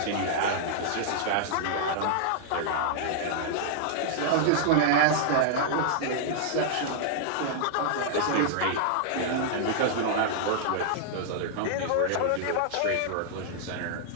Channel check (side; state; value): both; different; correlation -0.01